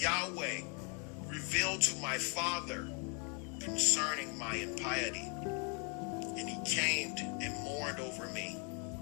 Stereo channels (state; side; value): quieter; right; 36.7 dB